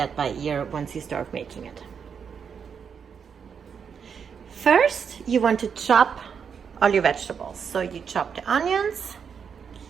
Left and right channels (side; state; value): left; quieter; 6.8 dB